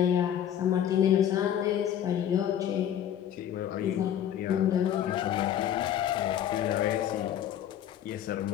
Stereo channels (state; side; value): quieter; right; 10.3 dB